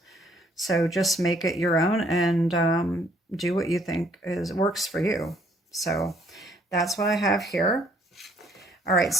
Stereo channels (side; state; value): both; normal; correlation 0.65